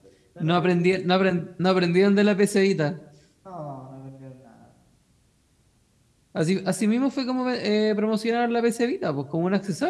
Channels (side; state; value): both; identical; correlation 1.00